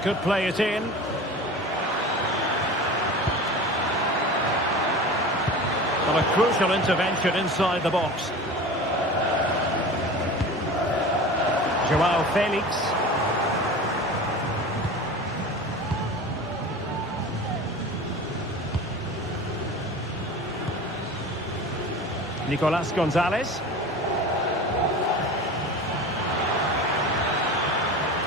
Could play it in. Well, a crucial intervention inside the box. Joao Felix. Nicolas Gonzalez.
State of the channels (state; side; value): normal; both; correlation 0.34